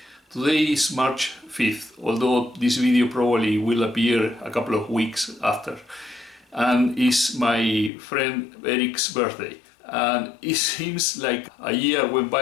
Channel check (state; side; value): drops out; right; at 7.9 s